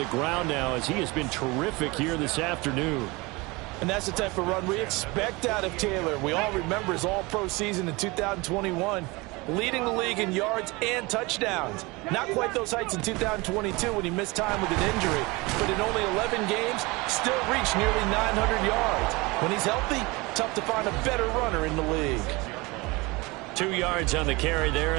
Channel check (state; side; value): quieter; left; 24.3 dB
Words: ground now as he has been terrific here this afternoon. And that's the type of run we expect out of Taylor. We all remember his all-pro season in 2021, leading the league in yards and touchdowns. Not quite those heights in 2022 when he missed time with an injury, but in only 11 games, still reached nearly 900 yards. When he's healthy, tough to find a better runner in the league. 2 yards on the carry there.